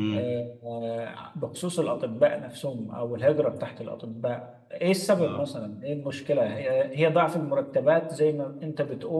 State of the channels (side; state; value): both; identical; correlation 1.00